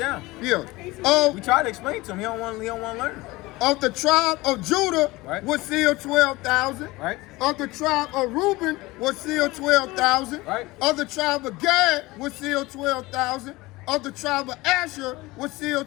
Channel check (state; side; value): quieter; right; 20.8 dB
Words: Yeah. We try to explain to him. He don't want to learn. Of the tribe of Judah Right. was sealed 12,000. Right? Of the tribe of Reuben was sealed 12,000. Right. Of the tribe of Gad was sealed 12,000. Of the tribe of Asher was